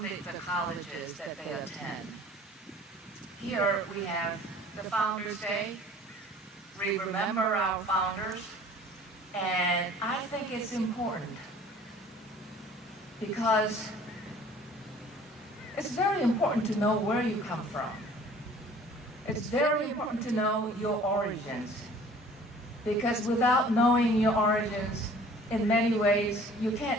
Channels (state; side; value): normal; both; correlation 0.50